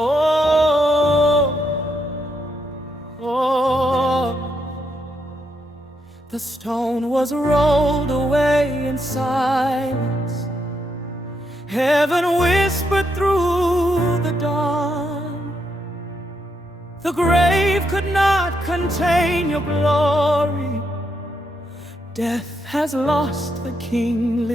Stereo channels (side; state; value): both; normal; correlation 0.79